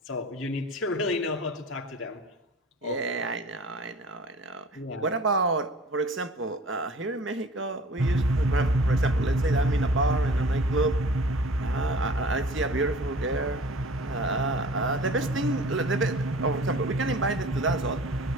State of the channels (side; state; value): both; normal; correlation 0.45